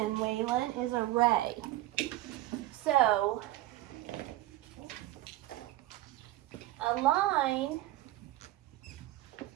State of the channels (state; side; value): quieter; left; 16.0 dB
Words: Waylon, is a ray. So, a line